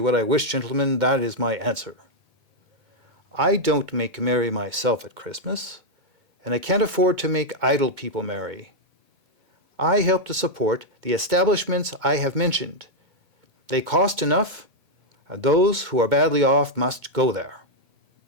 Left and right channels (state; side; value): late; left; 2.2 ms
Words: I wish, gentlemen, that is my answer. I don't make merry myself at Christmas, and I can't afford to make idle people merry. I help to support the establishments I have mentioned. They cost enough, and those who are badly off must go there.